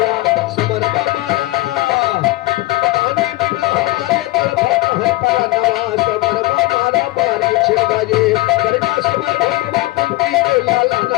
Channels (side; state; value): right; quieter; 19.7 dB